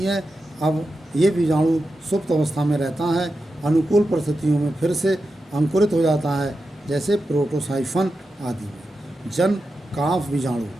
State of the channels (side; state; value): both; normal; correlation 0.90